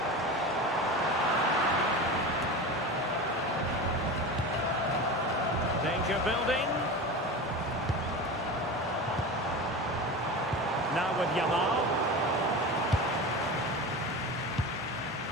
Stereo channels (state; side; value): normal; both; correlation 0.28